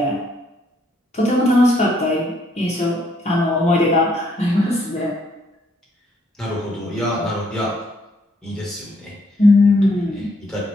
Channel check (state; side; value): normal; both; correlation 0.70